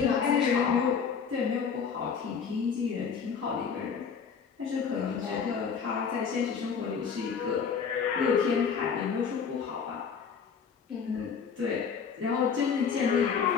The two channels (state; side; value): quieter; right; 6.3 dB